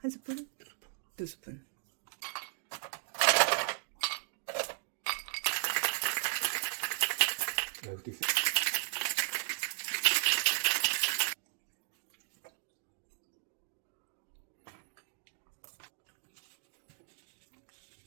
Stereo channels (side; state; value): left; silent; digital silence